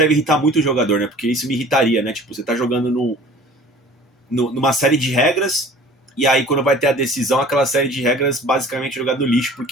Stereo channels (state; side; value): normal; both; correlation 0.46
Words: irritar muito o jogador, né? Porque isso me irritaria, né? Tipo, você tá jogando numa série de regras, e aí quando vai ter a decisão, aquela série de regras basicamente jogada no lixo,